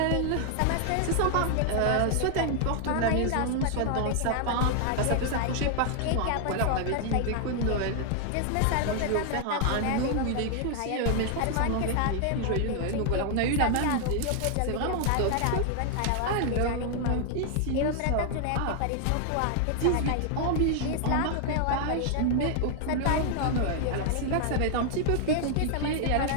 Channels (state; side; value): different; both; correlation 0.00